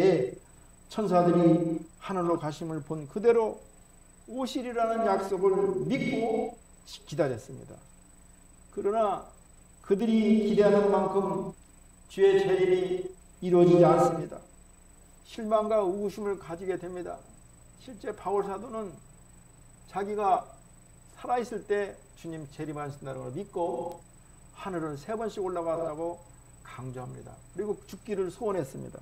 천사들이 하늘로 가심을 본 그대로 오시리라는 약속을 믿고 기다렸습니다. 그러나 그들이 기대하는 만큼 주의 재림이 이루어지지 않습니다. 실망과 의구심을 가지게 됩니다. 실제 바울 사도는 자기가 살아있을 때 주님 재림하신다는 걸 믿고 하늘을 3번씩 올라갔다고 강조합니다. 그리고 죽기를 소원했습니다.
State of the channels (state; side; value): identical; both; correlation 1.00